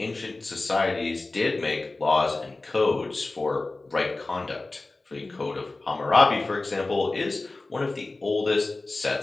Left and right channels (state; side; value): quieter; right; 3.2 dB